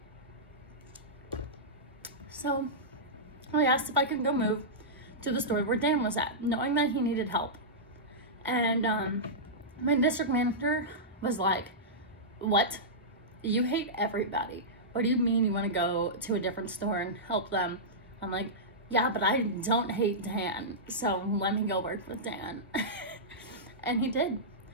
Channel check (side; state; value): both; normal; correlation -0.14